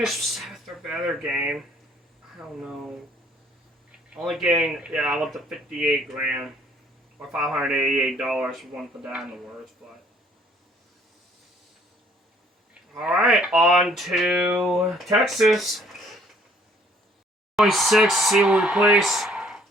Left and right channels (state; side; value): normal; both; correlation 0.60